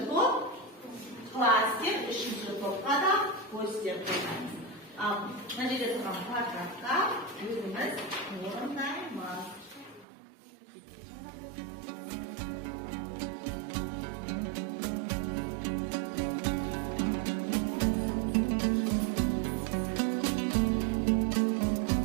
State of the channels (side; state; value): left; drops out; at 10.1 s